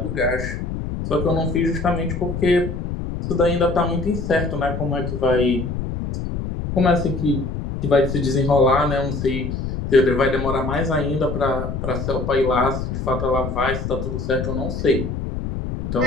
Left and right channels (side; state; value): left; noise; rumble, 4 dB below the sound